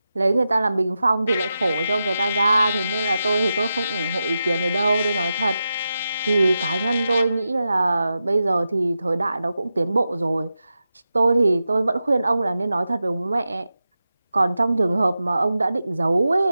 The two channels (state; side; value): inverted; both; correlation -0.91